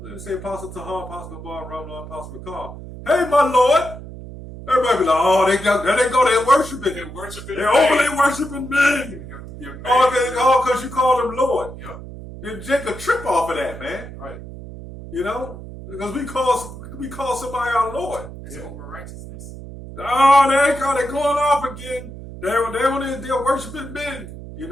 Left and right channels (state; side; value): noise; right; hum, 13 dB below the sound